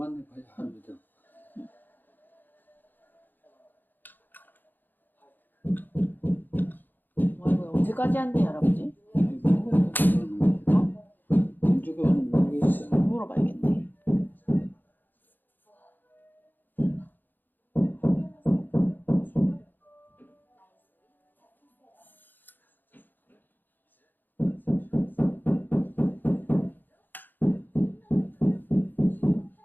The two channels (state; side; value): late; right; 0.089 ms